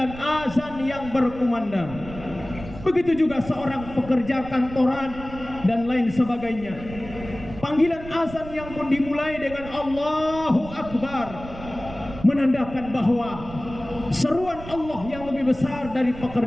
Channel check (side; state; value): right; noise; rumble, 14 dB below the sound